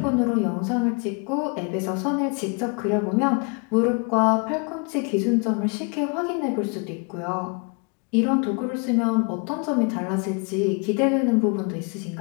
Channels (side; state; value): right; quieter; 34.2 dB